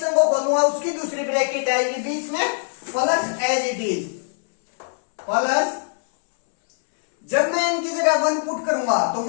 को खोलूंगा, उसकी दूसरी ब्रैकेट आएगी बीच में, plus as it is plus, जब मैं इनकी जगह 1 पुट करूंगा तो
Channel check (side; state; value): right; silent; 64 dB below the other